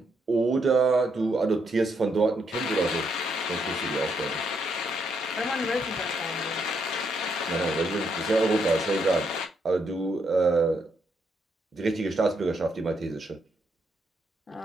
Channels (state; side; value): normal; both; correlation 0.76